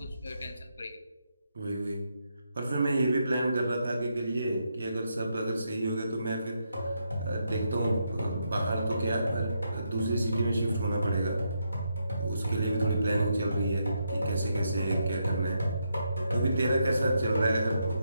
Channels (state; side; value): inverted; both; correlation -0.81